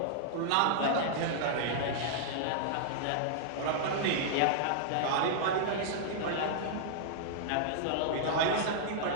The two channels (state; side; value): different; both; correlation -0.01